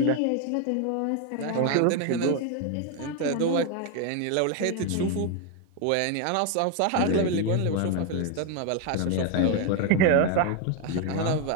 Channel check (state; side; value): different; both; correlation 0.01